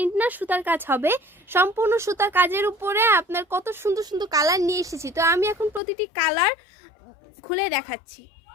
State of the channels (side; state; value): right; drops out; at 5.8 s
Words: না, সুতার কাজ হবে, সম্পূর্ণ সুতার কাজের উপরে আপনার কত সুন্দর সুন্দর কালার নিয়ে এসেছি। তো আমি এখন প্রতিটি কালার খুলে দেখাচ্ছি।